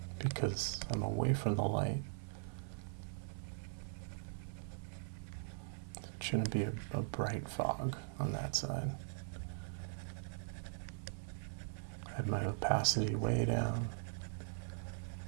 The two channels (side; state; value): left; silent; 50 dB below the other